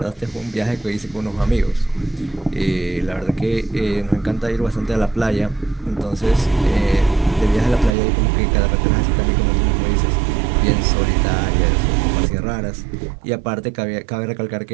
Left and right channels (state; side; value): drops out; left; at 7.9 s